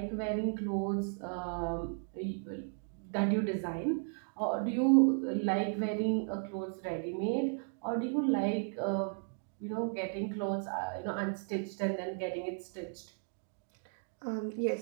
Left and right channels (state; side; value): silent; left; 54 dB below the other